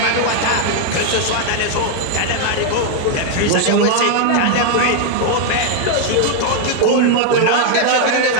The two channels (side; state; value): both; different; correlation 0.01